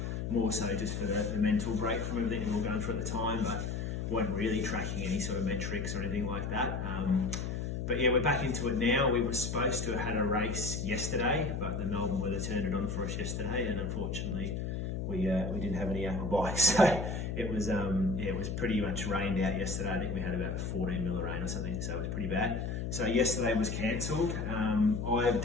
More so just for the mental break from everything we were going through at the time, but weren't really tracking any sort of metrics or anything like that. But yeah, we're back into it now. We were supposed to have had a race yesterday, but the Melbourne weather turned it on for us yesterday, and unfortunately, we didn't have any aqua bikes. So it was pretty much rained out yesterday. I think we had about 14 mil of rain or something, so it was pretty bad. So yesterday was cancelled.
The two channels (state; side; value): noise; left; hum, 3 dB below the sound